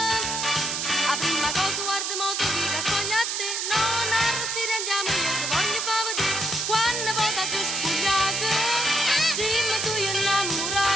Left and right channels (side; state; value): right; noise; hiss, 1 dB below the sound